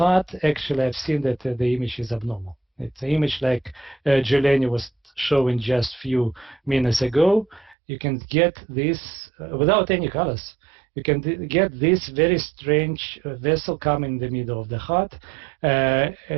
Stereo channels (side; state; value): left; drops out; at 7.8 s